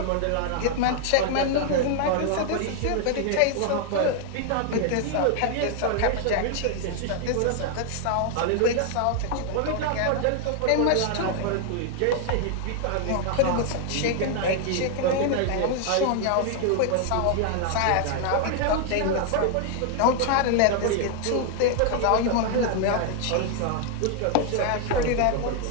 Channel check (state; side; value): different; both; correlation 0.00